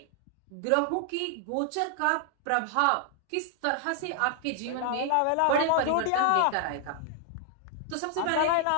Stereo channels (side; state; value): both; different; correlation 0.00